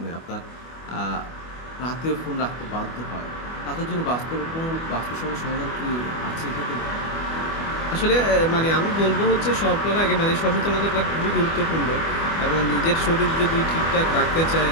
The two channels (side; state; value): right; late; 25 ms